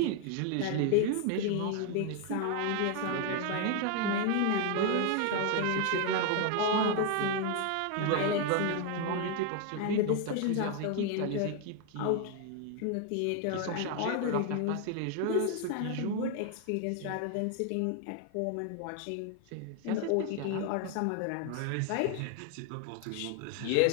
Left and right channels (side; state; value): both; different; correlation 0.01